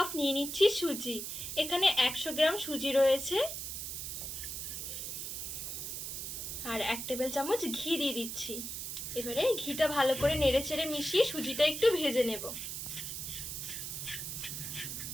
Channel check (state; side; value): noise; right; hiss, 5 dB below the sound